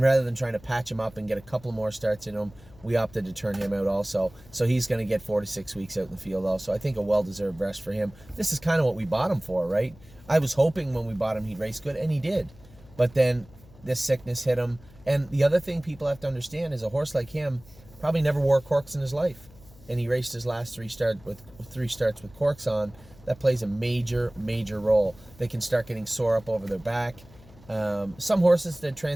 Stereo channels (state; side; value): noise; left; hum, 23 dB below the sound